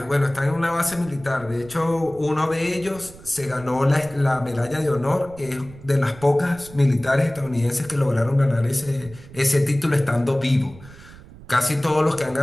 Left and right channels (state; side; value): noise; right; rumble, 19 dB below the sound